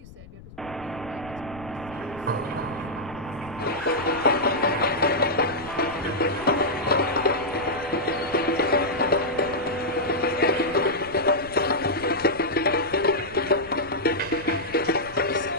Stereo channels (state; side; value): noise; left; rumble, 19 dB below the sound